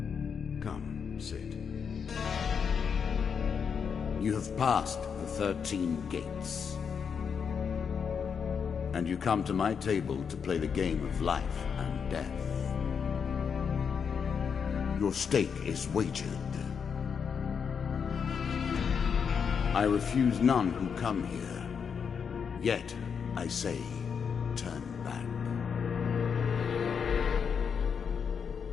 Come, sit. You have passed the 13 gates. And you come to my table to play the game of life and death. Your stake is wagered. I refuse none who come here. Yet, I say, turn back.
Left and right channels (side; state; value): right; quieter; 6.6 dB